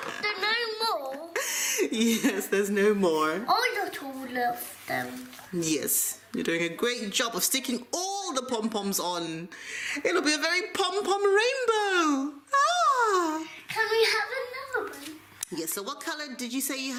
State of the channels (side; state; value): both; identical; correlation 1.00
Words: no more. Yes, there's no more. I got all of them. Yes, you're doing a great job of sticking all the pom-poms on. It'll be a very pom-pom rainbow. Ah! Can we have another one? Yes, so what color did you say you